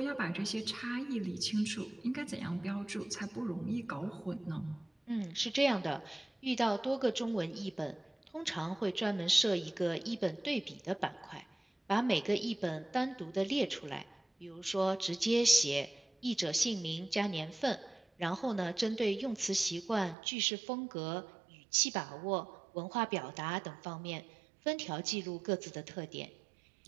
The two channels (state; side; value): drops out; left; at 20.2 s